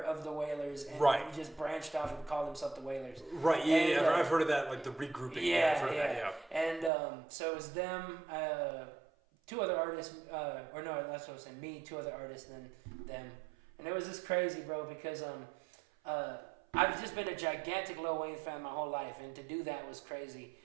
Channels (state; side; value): drops out; left; at 6.9 s